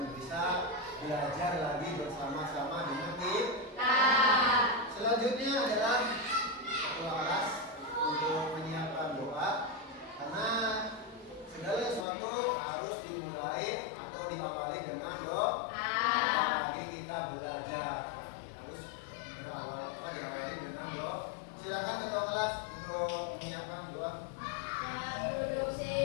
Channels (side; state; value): right; drops out; at 12.1 s